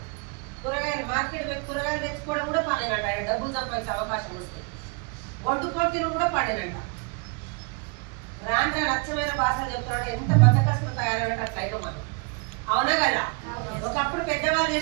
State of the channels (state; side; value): quieter; left; 33.7 dB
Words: కూరగాయలు మార్కెట్ పోయి కూరగాయలు తెచ్చుకోవడం కూడా పనేనంట. ఆయన డబ్బులు సంపాదించే అవకాశం వస్తే వండుకొని తినడం కూడా పనేనంట. రాను నచ్చమైన భాషలు చెప్తున్నాడు. ఎంత బద్దకస్తులు తయారైనట్టు అట్లయితే మనం, అవునా కదా? ఒకప్పుడు పెద్దవాళ్ళు